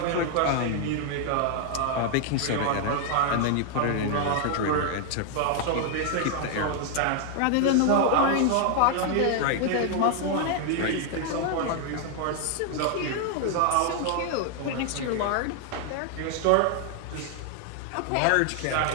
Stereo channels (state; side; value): different; both; correlation 0.00